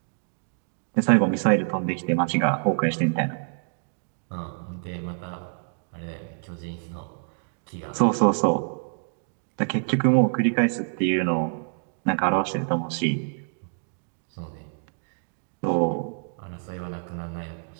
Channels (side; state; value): left; silent; digital silence